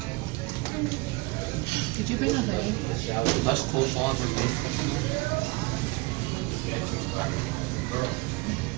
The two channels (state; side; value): quieter; left; 24.6 dB